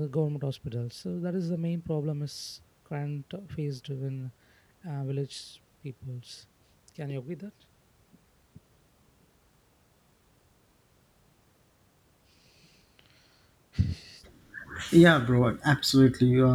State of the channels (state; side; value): identical; both; correlation 1.00